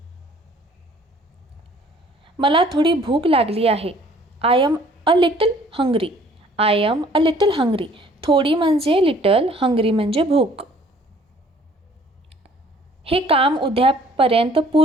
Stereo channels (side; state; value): both; normal; correlation 0.57